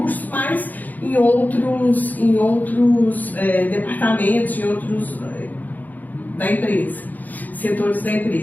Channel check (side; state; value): right; late; 0.082 ms